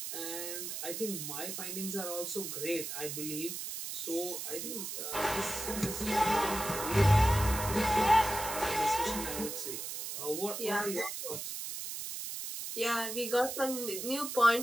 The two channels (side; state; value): right; noise; hiss, 6 dB below the sound